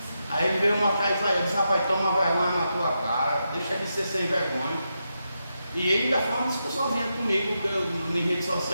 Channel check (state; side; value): inverted; both; correlation -0.86